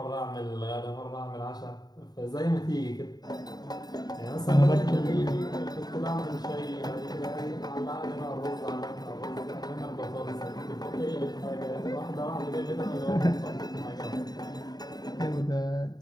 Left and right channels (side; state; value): right; late; 0.19 ms